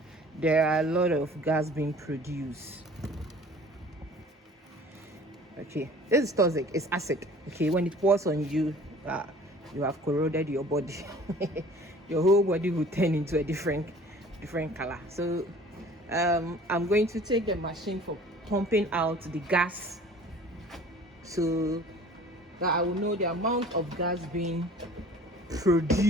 there are a lot of gas being produced. Okay, this is toxic, it's acid. Okay, when it pours on you, you have corroded your body. Your whole body will turn into a different color. So I'm going to take the machine for pumping out the gas, so that I will know the amount of gas being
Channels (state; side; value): normal; both; correlation 0.48